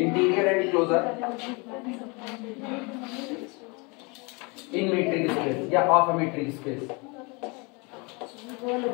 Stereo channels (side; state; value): right; quieter; 29.3 dB